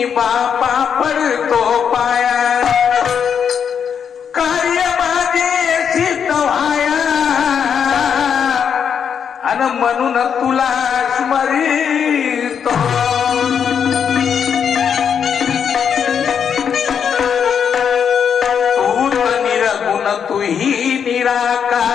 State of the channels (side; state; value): right; quieter; 7.5 dB